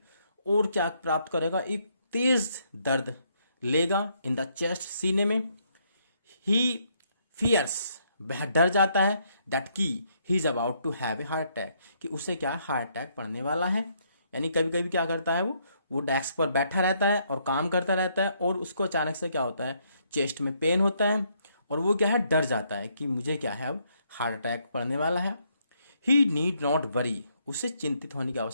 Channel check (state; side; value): inverted; both; correlation -0.72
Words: और क्या प्राप्त करेगा, एक तेज दर्द लेगा इन द चेस्ट, सीने में। ही फियर्स, वह डर जाता है, दैट की he is about to have a heart attack, कि उसे क्या है, हार्ट अटैक पड़ने वाला है। यानी कभी कभी क्या करता है, वो डेस्क पर बैठा रहता है और काम करता रहता है, और उसको अचानक से क्या होता है, चेस्ट में पेन होता है, और वो क्या है, डर जाता है कि मुझे क्या है, अब हार्ट अटैक पड़ने वाला है। ही नीड नॉट वरी, उसे चिंतित होने की